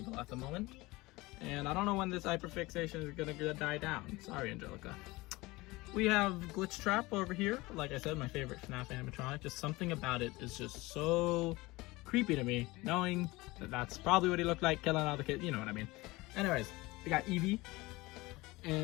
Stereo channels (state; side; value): quieter; right; 21.4 dB